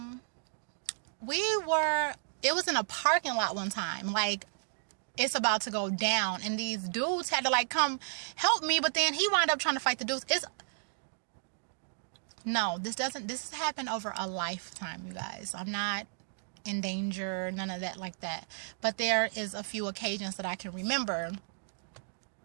we were It was in a parking lot one time. Like, it's about to go down. And these dudes had to, like, come help me. But then he wound up trying to fight the dudes. No, this has happened over a lifetime, you guys. I'm not in danger, none of that like that. But there is a few occasions that I can remember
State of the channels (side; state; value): left; silent; digital silence